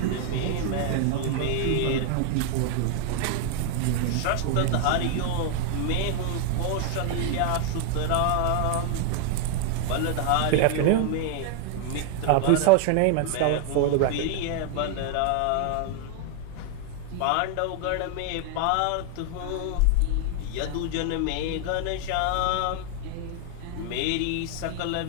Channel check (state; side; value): different; both; correlation 0.00